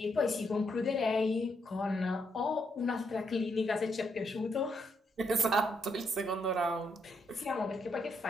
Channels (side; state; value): both; normal; correlation 0.77